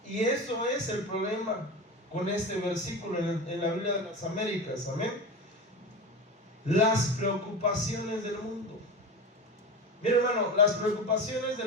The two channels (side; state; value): both; normal; correlation 0.26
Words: Y eso es el problema con este versículo en la Biblia de las Américas. Amén. Las preocupaciones del mundo. Mira, hermano, las preocupaciones